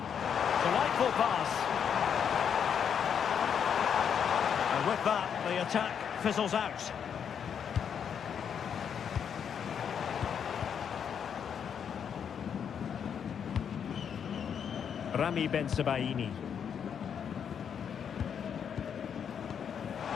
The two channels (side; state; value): right; quieter; 7.8 dB